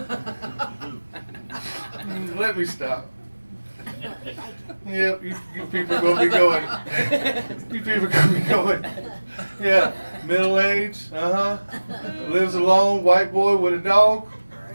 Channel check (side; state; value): both; inverted; correlation -1.00